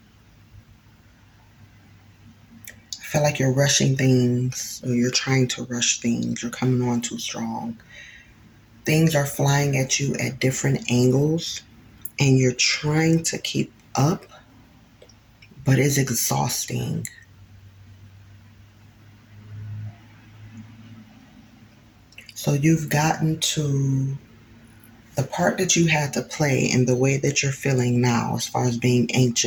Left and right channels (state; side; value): identical; both; correlation 1.00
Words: feel like you're rushing things, or you're trying to rush things. You're coming on too strong. Things are flying at you at different angles, and you're trying to keep up, but it's exhausting. So you've gotten to the part that you had to play in the way that you're feeling now, as far as being